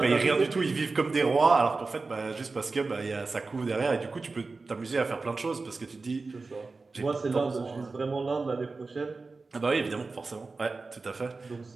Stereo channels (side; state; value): left; quieter; 3.9 dB